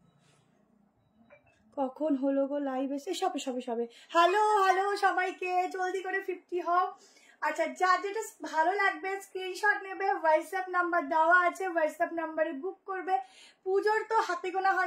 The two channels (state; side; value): identical; both; correlation 1.00